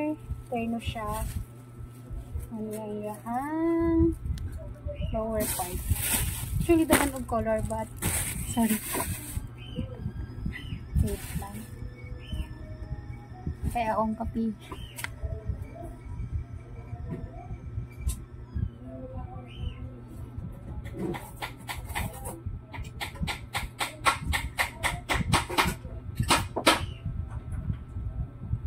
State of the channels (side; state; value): both; identical; correlation 1.00